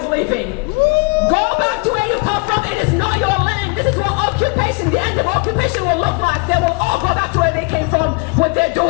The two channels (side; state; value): right; quieter; 30.9 dB